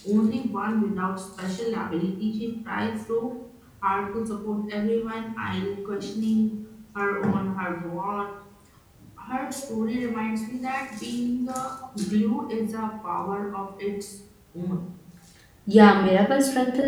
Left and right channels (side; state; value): both; identical; correlation 1.00